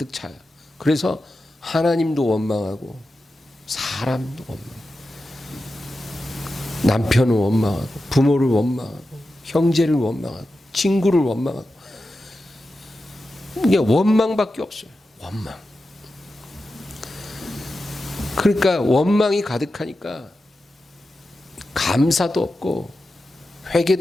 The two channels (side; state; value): both; normal; correlation 0.91